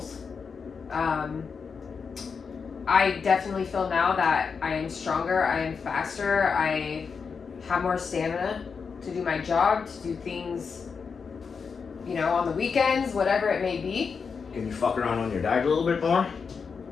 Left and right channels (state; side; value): quieter; right; 5.6 dB